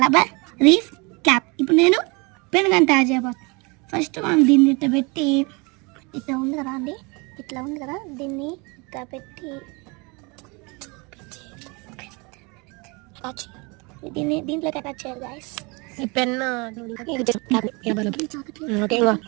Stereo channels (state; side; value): quieter; left; 28.6 dB